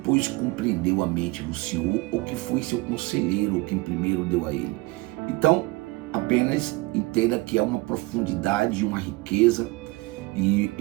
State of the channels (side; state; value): left; quieter; 22.5 dB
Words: compreendeu a mente do Senhor, ou que foi seu conselheiro, ou quem primeiro deu a ele? Então, apenas entenda que é uma profundidade, uma riqueza, e